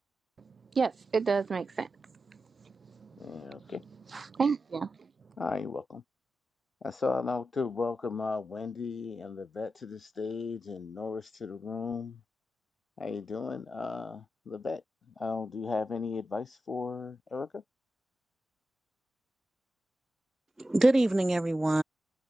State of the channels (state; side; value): normal; both; correlation 0.91